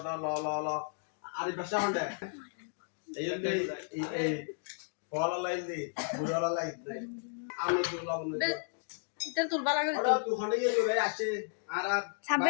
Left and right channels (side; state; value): right; silent; digital silence